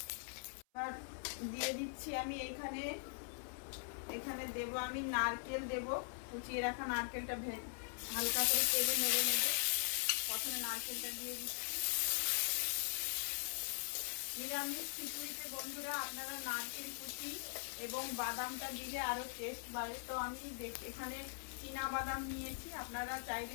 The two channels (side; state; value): right; silent; 50 dB below the other